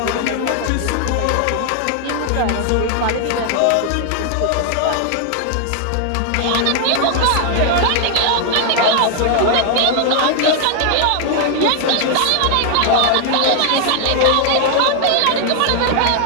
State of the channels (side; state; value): both; different; correlation 0.00